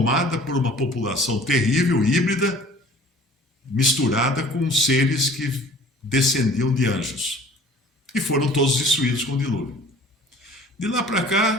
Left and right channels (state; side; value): normal; both; correlation 0.49